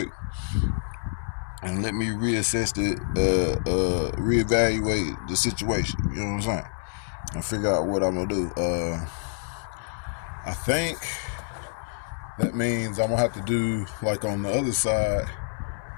And let me reevaluate the situation. You know what I'm saying? And figure out what I'm gonna do. I think that means I'm gonna have to do like on the other side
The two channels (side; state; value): right; silent; 58 dB below the other